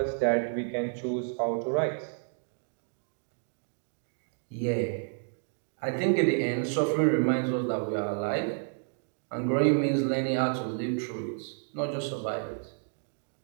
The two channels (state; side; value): silent; left; digital silence